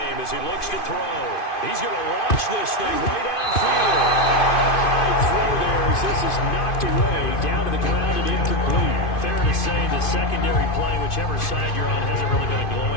as he looks to throw. He's going to launch this thing way downfield. A high throw there as this is knocked away down to the ground and incomplete. Fair to say the secondary play, whichever side you're on, hasn't really been a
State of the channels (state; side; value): late; right; 2.5 ms